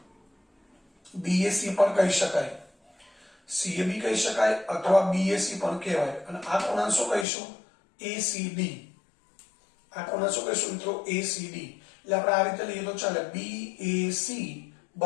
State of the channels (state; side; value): drops out; right; at 7.2 s